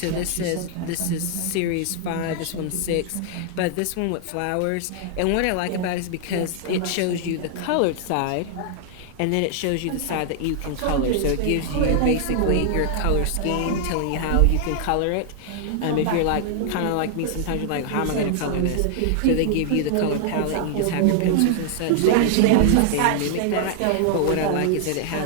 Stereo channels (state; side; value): different; both; correlation 0.00